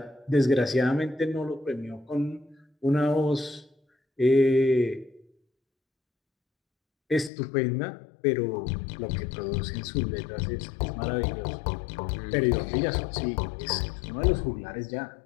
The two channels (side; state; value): right; drops out; at 7.3 s